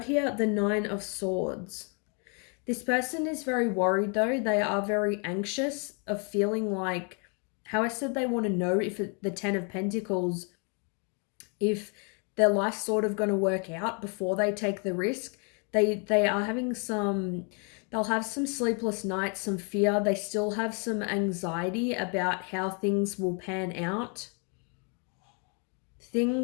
here the 9 of Swords. This person is very worried though. They are very anxious of feeling like, how I said they want to know if the 10 of Pentacles, if their life's sort of going to work out before they take the risk. They are having they'll have some sleepless nights, some fear. They still have some anxiety about how things will pan out.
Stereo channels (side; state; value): right; quieter; 37.2 dB